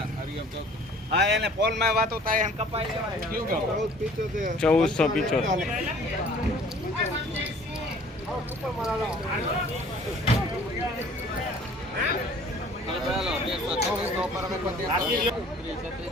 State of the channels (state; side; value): normal; both; correlation 0.52